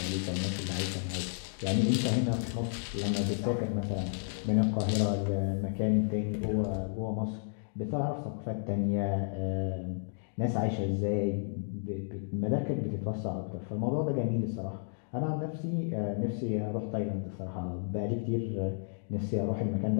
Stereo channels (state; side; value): silent; right; digital silence